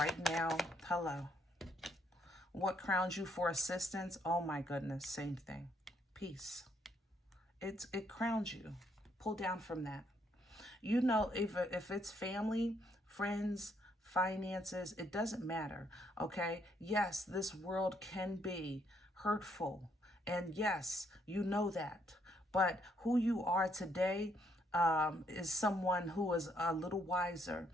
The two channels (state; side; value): normal; both; correlation 0.72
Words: now? Hello. What crowns you for assistance? Oh my goodness. Same thing. Peace. It crowns you. Pull down from that. You know, if it's family, friends, finances, it doesn't matter, okay? Yes, this world can be hurtful, and yes, you know that. But who you are today is someone who is a little wiser,